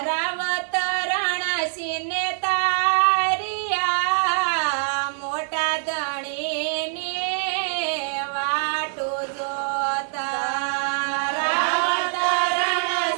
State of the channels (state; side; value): silent; left; digital silence